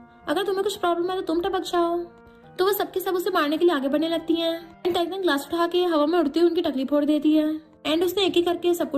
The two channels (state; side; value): identical; both; correlation 1.00